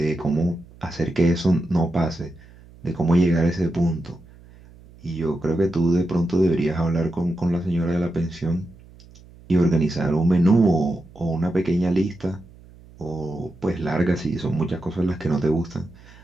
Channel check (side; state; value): right; noise; hum, 23 dB below the sound